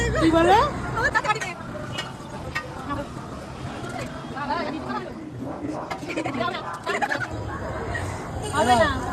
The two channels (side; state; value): both; identical; correlation 1.00